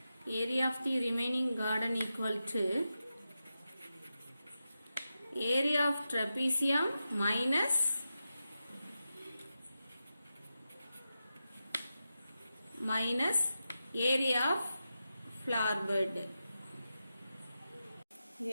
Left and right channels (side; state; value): both; inverted; correlation -0.90